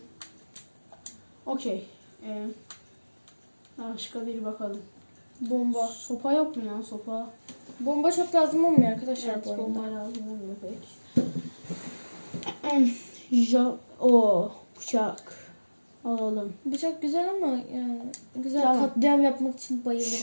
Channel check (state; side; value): inverted; both; correlation -1.00